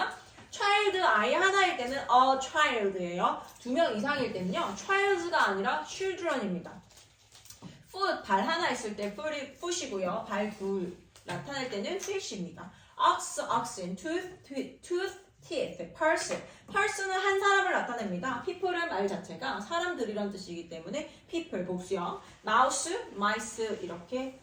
child 아이 하나일 때는 a child예요. 두 명 이상일 때는요. childs가 아니라 children입니다. foot 발 하나 있을 때 foot이고요. 발 둘 나타낼 때는 fish입니다. ox, oxen, tooth, tooth, teeth, person. person은 한 사람을 나타냅니다. people은 말 자체가 사람들이란 뜻이기 때문에 people 복수형. mouse, mice 이렇게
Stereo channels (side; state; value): both; identical; correlation 1.00